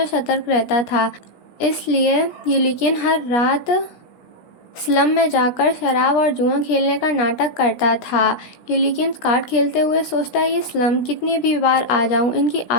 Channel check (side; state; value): right; late; 16 ms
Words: सतर्क रहता था। इसलिए यूलिकियन हर रात स्लम में जाकर शराब और जुआ खेलने का नाटक करता था। यूलिकियन कार्ड खेलते हुए सोचता है ये स्लम कितनी भी बार आ जाऊं इनकी